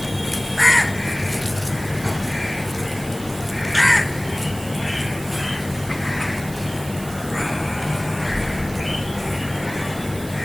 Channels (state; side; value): noise; right; hiss, 15 dB below the sound